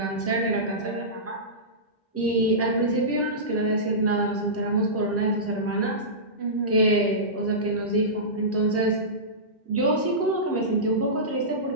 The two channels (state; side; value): normal; both; correlation -0.18